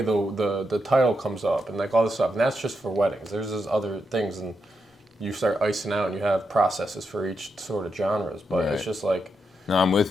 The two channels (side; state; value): both; normal; correlation 0.84